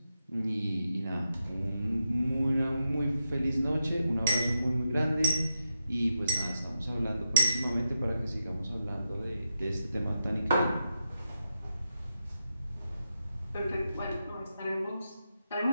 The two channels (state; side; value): inverted; both; correlation -0.86